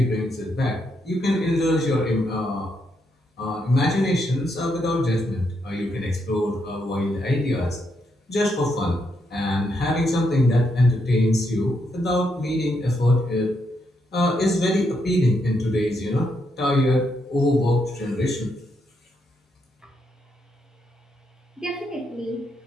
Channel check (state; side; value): normal; both; correlation 0.79